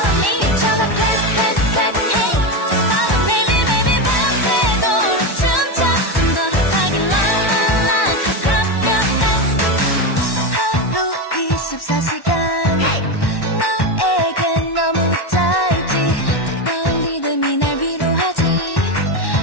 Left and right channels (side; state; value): right; late; 1.1 ms